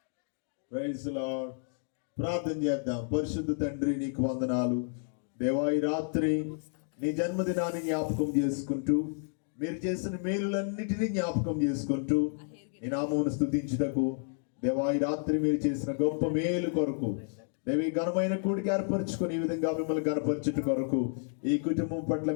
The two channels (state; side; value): silent; right; digital silence